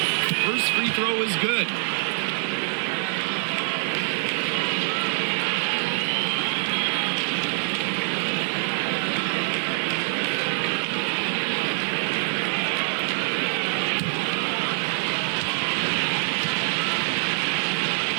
First free throw is good.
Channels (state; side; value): silent; left; digital silence